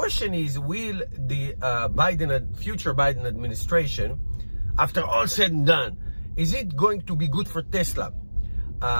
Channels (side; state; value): both; inverted; correlation -1.00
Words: is, will the future Biden administration, after all said and done, is it going to be good for Tesla?